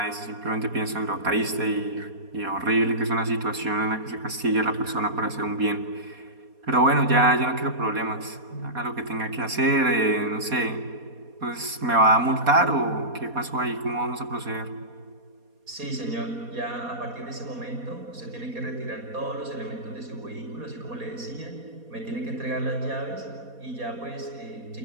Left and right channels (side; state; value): left; late; 4.2 ms